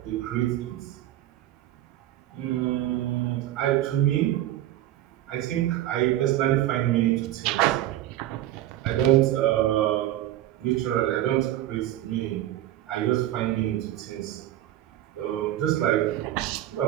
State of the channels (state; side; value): quieter; left; 13.7 dB